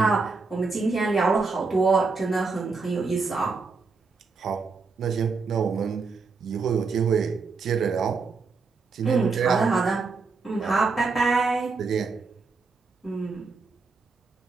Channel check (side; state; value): left; quieter; 4.4 dB